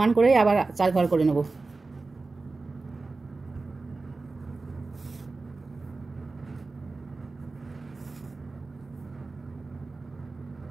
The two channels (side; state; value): left; quieter; 3.7 dB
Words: করে আবার 4 ঘর করে নেব।